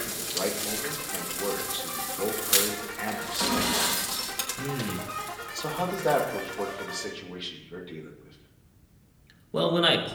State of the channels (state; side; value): identical; both; correlation 1.00